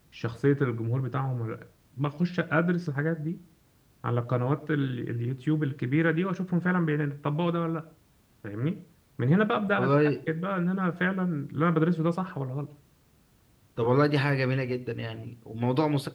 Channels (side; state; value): both; identical; correlation 1.00